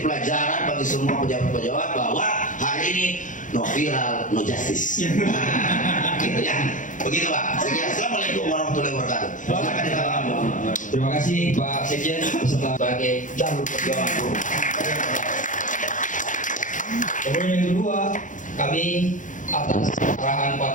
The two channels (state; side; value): late; right; 0.37 ms